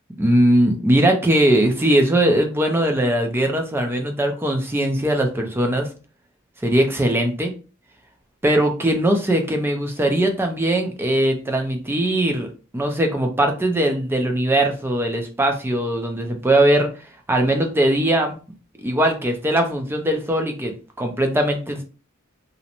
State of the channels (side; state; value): both; normal; correlation 0.70